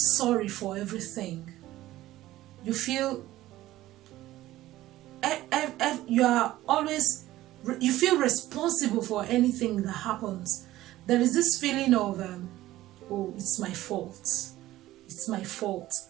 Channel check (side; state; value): left; quieter; 15.6 dB